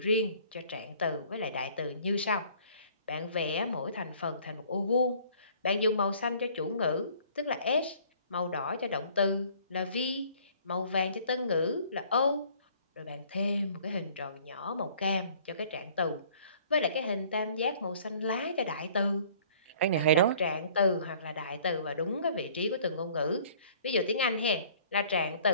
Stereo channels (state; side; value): inverted; both; correlation -0.54